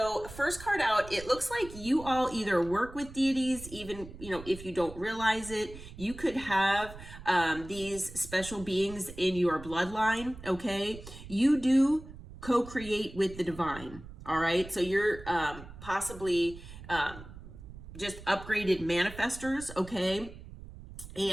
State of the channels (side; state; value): right; noise; rumble, 15 dB below the sound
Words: first card out, it looks like you all either work with deities, even, if you don't realize it, you could have these special beings in your bloodline, okay? You do co-create with the divine, all right? So you're possibly just upgraded manifestors, okay?